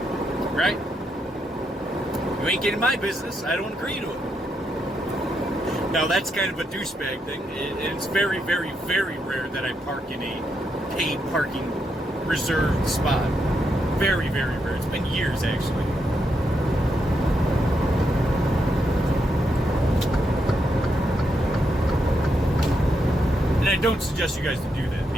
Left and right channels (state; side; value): normal; both; correlation 0.81